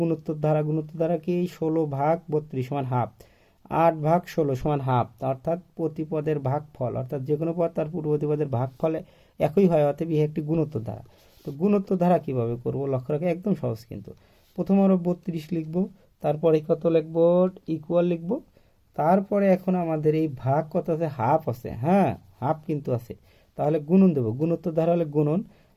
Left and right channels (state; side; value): identical; both; correlation 1.00